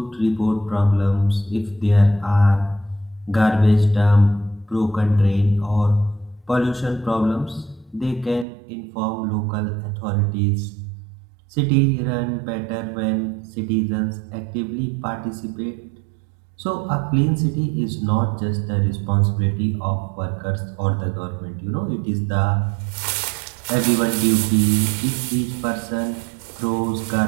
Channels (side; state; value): left; drops out; at 8.5 s